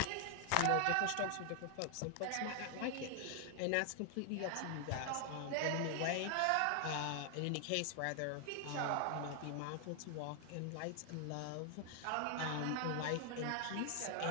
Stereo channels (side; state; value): both; different; correlation 0.00